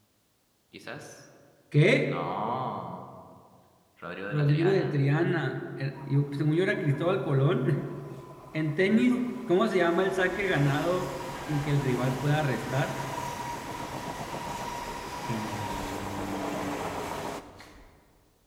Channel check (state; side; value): identical; both; correlation 1.00